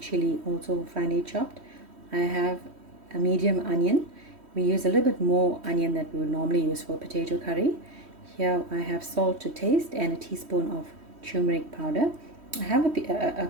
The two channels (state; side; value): late; left; 3.1 ms